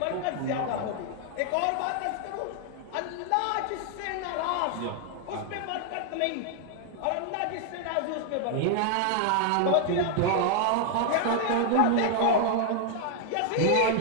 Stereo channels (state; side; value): different; both; correlation 0.00